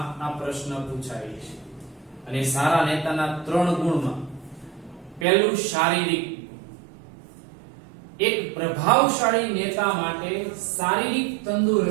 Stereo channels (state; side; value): drops out; left; at 5.2 s